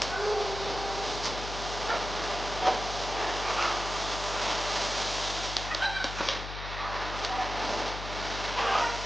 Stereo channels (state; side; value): noise; left; hum, 8 dB below the sound